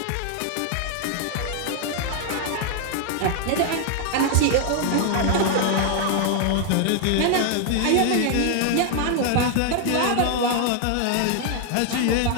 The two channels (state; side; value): different; both; correlation 0.00